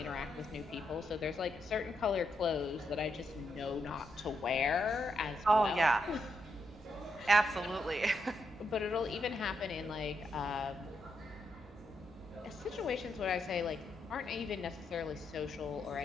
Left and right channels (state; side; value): normal; both; correlation 0.81